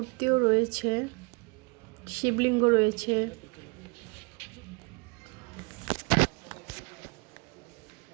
রয়েছে, শিবলিঙ্গ রয়েছে।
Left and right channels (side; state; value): left; quieter; 31.5 dB